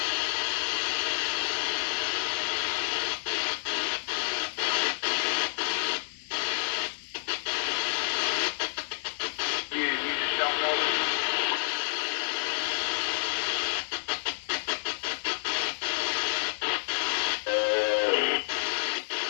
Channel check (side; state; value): right; silent; 58 dB below the other